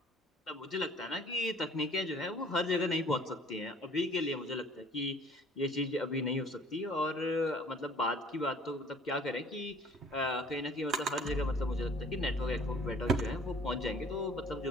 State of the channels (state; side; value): normal; both; correlation 0.53